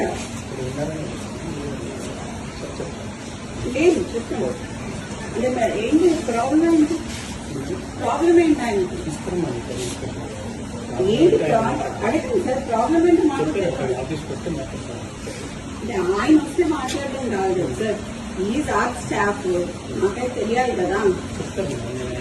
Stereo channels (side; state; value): both; identical; correlation 1.00